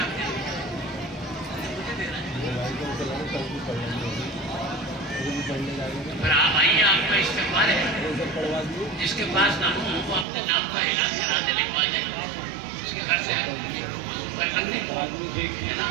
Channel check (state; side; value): drops out; left; at 10.2 s